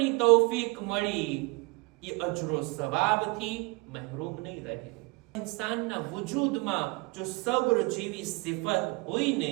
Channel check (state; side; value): quieter; left; 27.2 dB